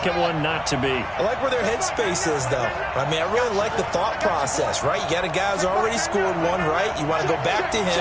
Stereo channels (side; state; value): both; identical; correlation 1.00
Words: one not to be. I like where their headspace is, though. I mean, I really like the thought process, right? You got a guy who's already scored one, right? You want to go back to